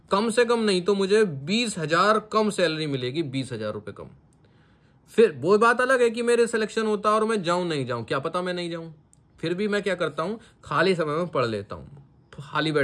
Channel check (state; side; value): identical; both; correlation 1.00